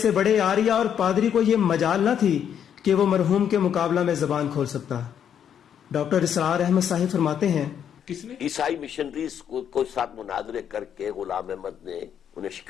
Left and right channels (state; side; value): quieter; right; 8.8 dB